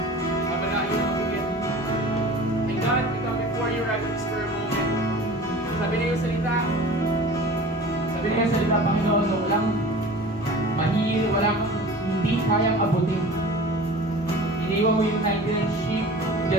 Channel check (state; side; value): normal; both; correlation 0.40